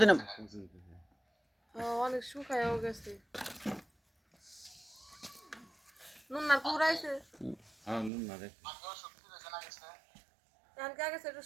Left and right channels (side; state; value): left; drops out; at 8.1 s